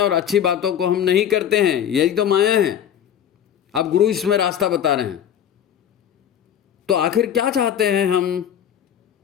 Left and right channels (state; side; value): quieter; right; 9.5 dB